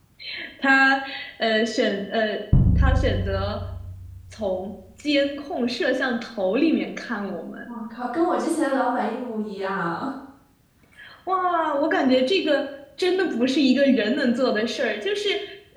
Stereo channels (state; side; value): identical; both; correlation 1.00